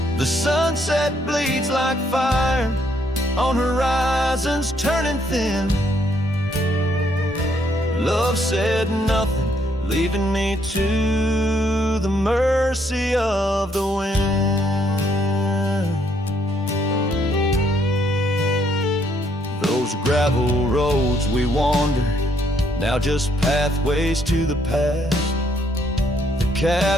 The sunset bleeds like fire on horizons turning thin. Love said nothing, leaving me to the mercy of the wind. Those gravel roads we wandered, now just pathways to the past. The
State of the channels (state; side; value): normal; both; correlation 0.71